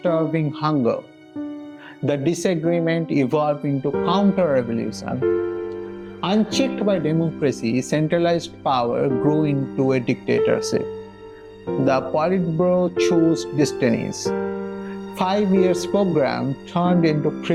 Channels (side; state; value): both; identical; correlation 1.00